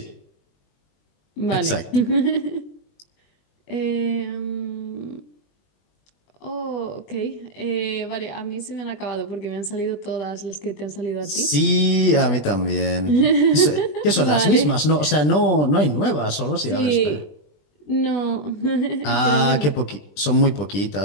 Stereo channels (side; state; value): right; late; 20 ms